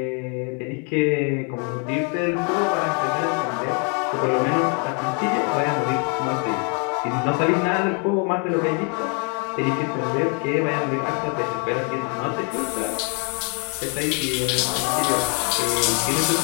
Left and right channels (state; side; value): quieter; right; 37.5 dB